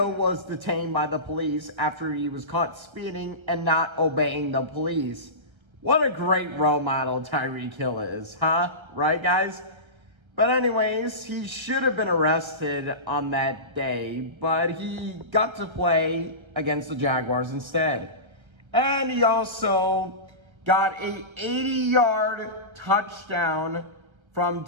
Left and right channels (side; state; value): left; late; 1.3 ms